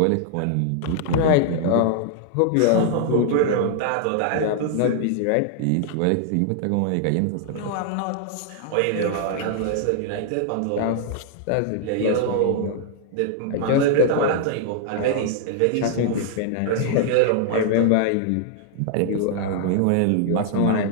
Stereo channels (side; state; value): both; different; correlation 0.00